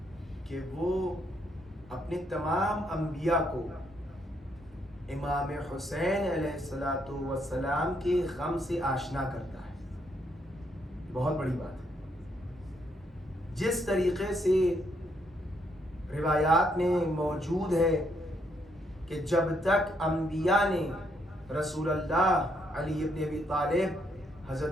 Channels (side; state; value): both; normal; correlation 0.74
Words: کہ وہ اپنے تمام انبیاء کو امام حسین علیہ السلام کے غم سے آشنا کرتا ہے. بہت بڑی بات ہے. جس طریقے سے روایات میں موجود ہے کہ جب تک انبیاء نے رسول اللہ علی ابن ابی طالب